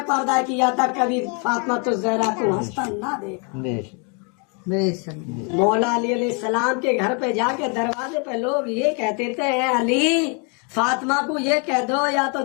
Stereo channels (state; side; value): quieter; right; 35.9 dB